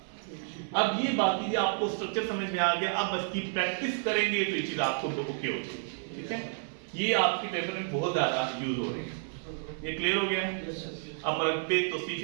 अब ये बाकी आपको स्ट्रक्चर समझ में आ गया, अब बस की प्रैक्टिस करेंगे तो ये चीज आपको ओके होगी, ठीक है। ये आपके पेपर में बहुत ज्यादा यूज हो रही है, ये क्लियर हो गया है। अब मरकबे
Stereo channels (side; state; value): left; silent; 56 dB below the other